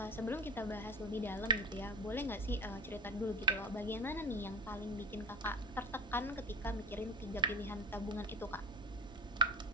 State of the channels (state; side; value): normal; both; correlation 0.28